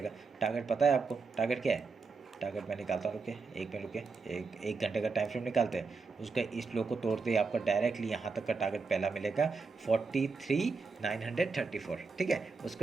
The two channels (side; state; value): left; quieter; 4.6 dB